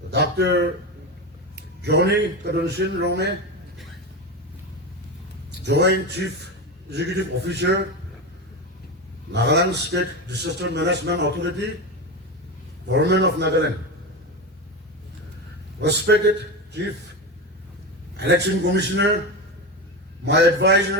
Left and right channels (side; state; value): both; normal; correlation 0.19